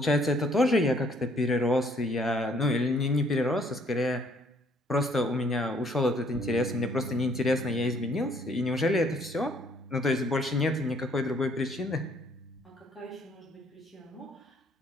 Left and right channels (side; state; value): both; normal; correlation 0.64